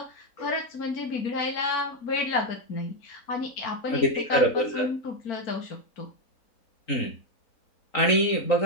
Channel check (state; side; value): late; right; 3.9 ms